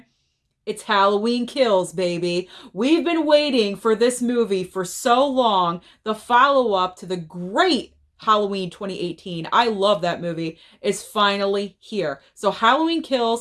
It's Halloween Kills, baby. We've been waiting for this movie for so long. The follow-up to the great Halloween 2018, I love that movie, is finally here. So Halloween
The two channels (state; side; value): identical; both; correlation 1.00